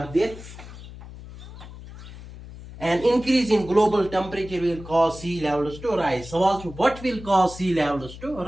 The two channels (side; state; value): left; noise; hum, 15 dB below the sound